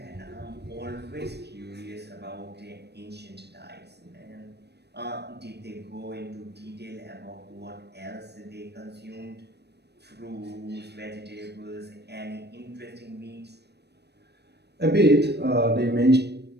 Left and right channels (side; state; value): left; late; 0.48 ms